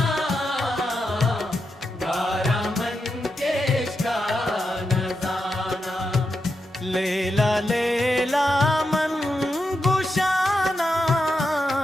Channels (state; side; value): normal; both; correlation 0.86